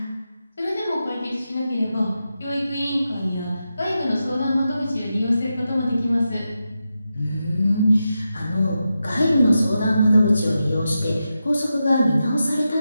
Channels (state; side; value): inverted; both; correlation -0.89